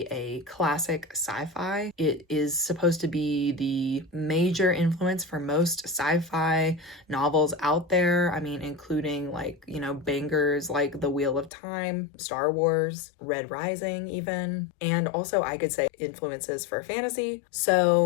a classic sci-fi. It is supposed to be the major influence for most sci-fi novels out there. I mean, including like, you know, bangers like The Wheel of Time, Star Wars, Red Rising even. And also I could say influences for fantasy.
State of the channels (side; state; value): right; drops out; at 11.5 s